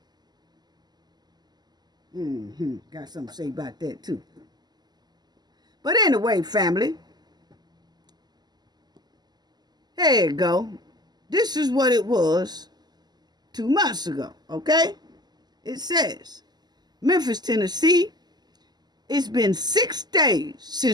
Got something to say about that too. But anyway, family, there you go. This is what it was 2 months ago, okay? It says, Memphis, Tennessee, it's been 6 days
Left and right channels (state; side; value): late; left; 0.20 ms